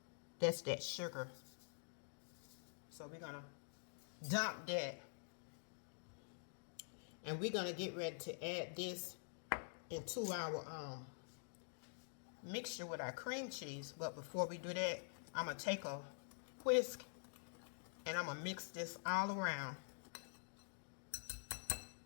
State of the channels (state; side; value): silent; right; digital silence